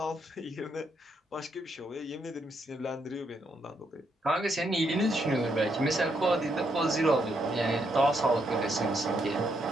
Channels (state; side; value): normal; both; correlation 0.77